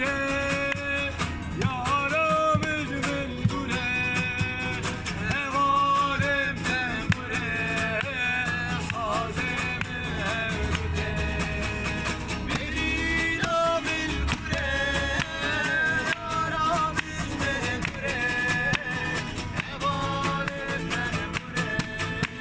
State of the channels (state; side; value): identical; both; correlation 1.00